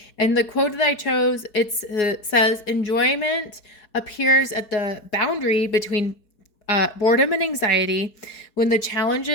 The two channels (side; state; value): right; late; 4.8 ms